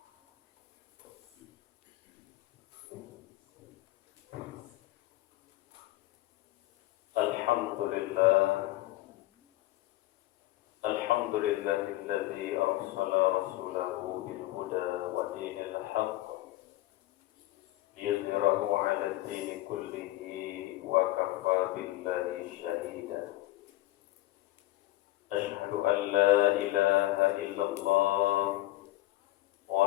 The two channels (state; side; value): quieter; right; 16.8 dB